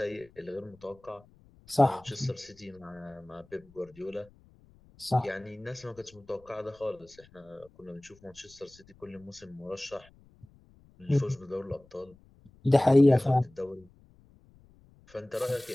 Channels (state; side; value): noise; left; rumble, 27 dB below the sound